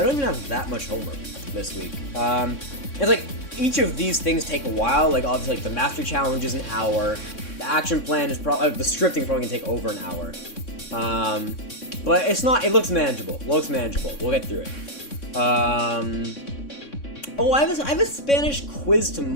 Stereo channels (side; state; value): right; late; 3.6 ms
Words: don't even have that much homework this week. It's like, each of these things take a while. Like, obviously, like, the mastery challenge is an hour. The action plan is probably, the scripting probably gonna take over an hour. But it's not, it looks manageable. We'll get through it. Oh, I have a Spanish quiz